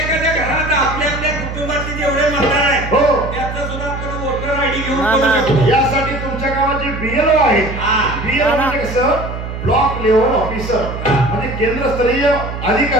घरात आपल्या आपल्या कुटुंबातील जेवढे मतदार आहेत हो त्याचा सुद्धा आपण वोटर आयडी घेऊन करू शकतो. यासाठी तुमच्या गावात जे बीएलओ आहे बीएलओ म्हणजे कसं ब्लॉक लेवल ऑफिसर म्हणजे केंद्रस्तरीय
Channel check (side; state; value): right; noise; hum, 7 dB below the sound